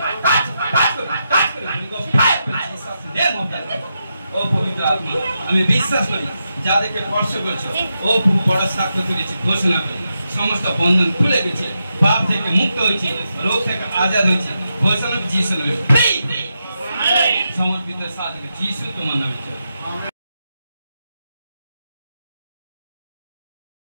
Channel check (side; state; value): both; inverted; correlation -0.86